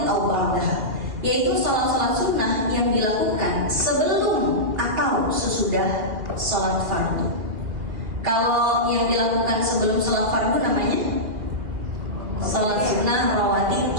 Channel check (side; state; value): left; late; 2.2 ms